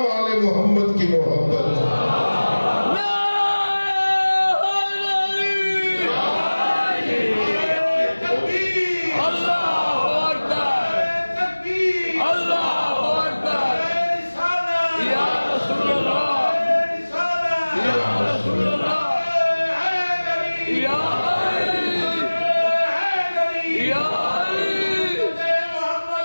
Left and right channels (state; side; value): inverted; both; correlation -1.00